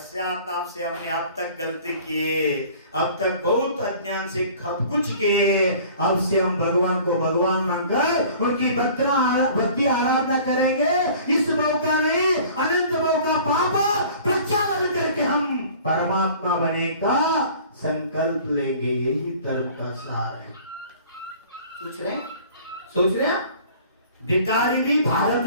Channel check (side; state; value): both; inverted; correlation -0.48